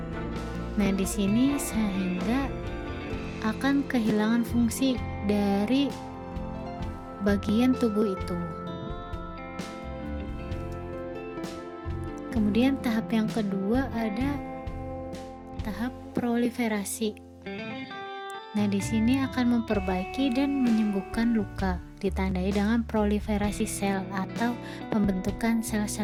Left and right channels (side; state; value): both; identical; correlation 1.00